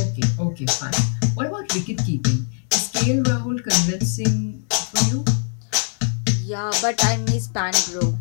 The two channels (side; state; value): right; silent; digital silence